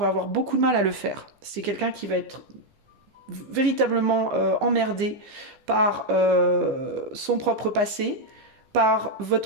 avoir beaucoup de mal à le faire. C'est quelqu'un qui va être véritablement emmerdé par son propre passé, par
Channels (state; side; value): late; left; 15 ms